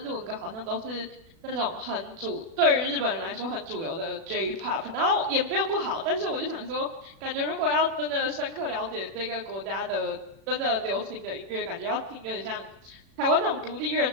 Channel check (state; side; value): late; left; 36 ms